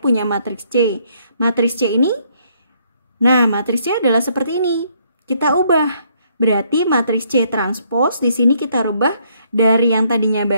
matriks C. Matriks C ini, nah matriks C adalah seperti ini. Kita ubah. Berarti matriks C transpose di sini kita rubah dari yang tadinya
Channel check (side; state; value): both; inverted; correlation -0.69